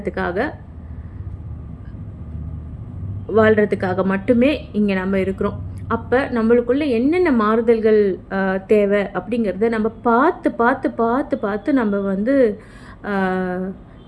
வாழ்கிறதுக்காக மட்டுமே இங்கே நம்ம இருக்கிறோம். அப்போ நம்மளுக்குள்ள என்னென்ன மாறுதல்கள் தேவை அப்படிங்கிறத நம்ம பார்த்து பார்த்து பார்த்து பார்த்து நம்ம வந்து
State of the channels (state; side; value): identical; both; correlation 1.00